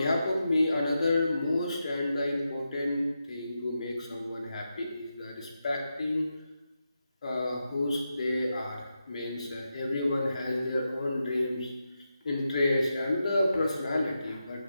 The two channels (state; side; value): inverted; both; correlation -0.88